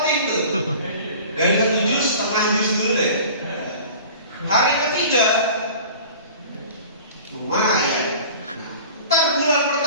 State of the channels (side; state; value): both; inverted; correlation -0.42